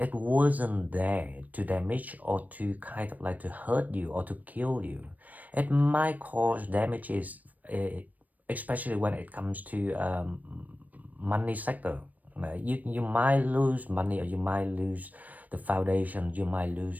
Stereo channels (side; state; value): left; late; 0.078 ms